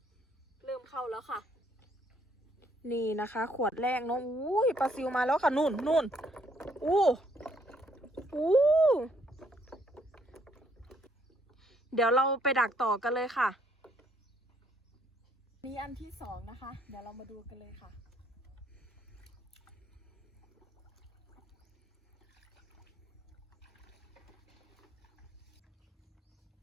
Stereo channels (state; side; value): normal; both; correlation 0.68